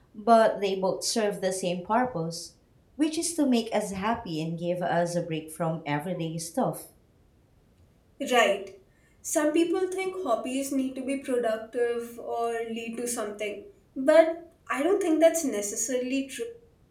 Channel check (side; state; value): both; identical; correlation 1.00